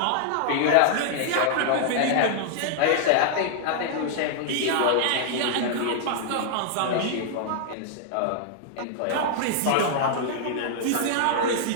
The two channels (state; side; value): different; both; correlation -0.01